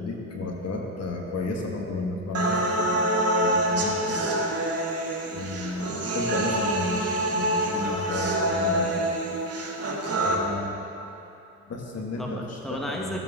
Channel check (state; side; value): normal; both; correlation 0.01